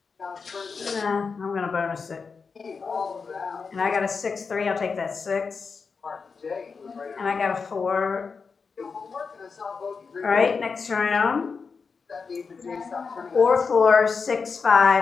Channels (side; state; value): right; quieter; 5.1 dB